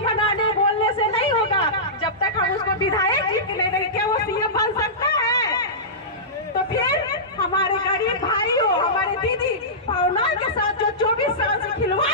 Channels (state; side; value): normal; both; correlation -0.17